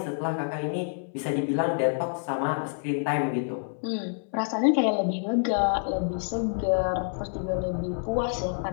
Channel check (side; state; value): right; silent; digital silence